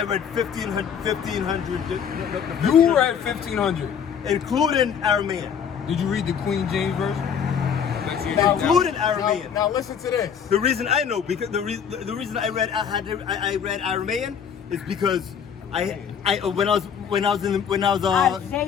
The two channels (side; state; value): right; quieter; 7.6 dB